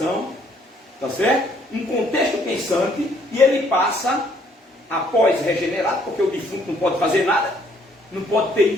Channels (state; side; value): normal; both; correlation 0.65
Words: tá certo? Um contexto pensante, e ele passa, após regenerado, porque o defunto não pode fazer nada, não pode ter